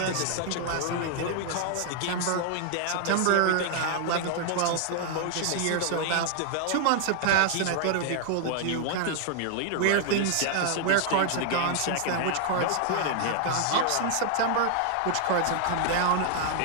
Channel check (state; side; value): different; both; correlation 0.00